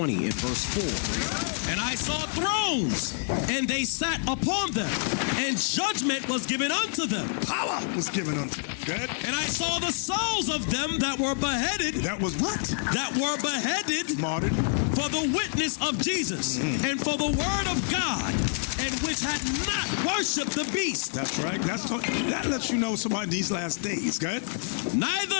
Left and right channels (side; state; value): right; silent; 60 dB below the other